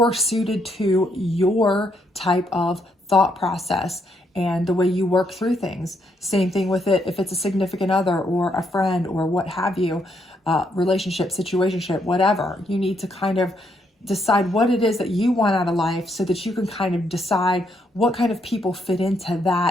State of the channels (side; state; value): both; normal; correlation 0.75